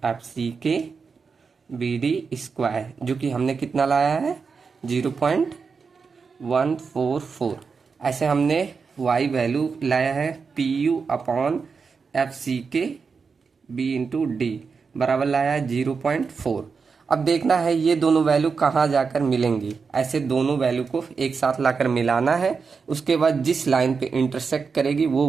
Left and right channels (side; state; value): left; quieter; 5.2 dB